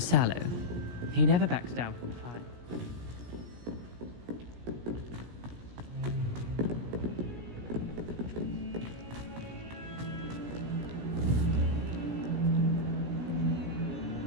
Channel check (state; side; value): late; left; 17 ms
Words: He never backs down from the fight.